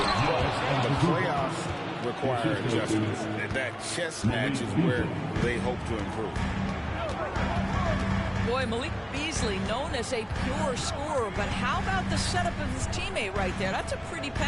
but the playoffs require adjustments. That chess match is where they hope to improve. Boy, Malik Beasley, known as a pure scorer, but how about the setup of his teammate right there? That's a pretty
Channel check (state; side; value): identical; both; correlation 1.00